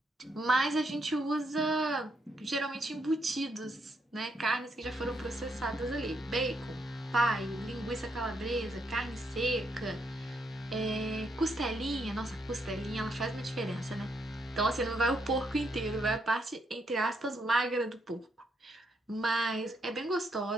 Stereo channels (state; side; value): normal; both; correlation 0.77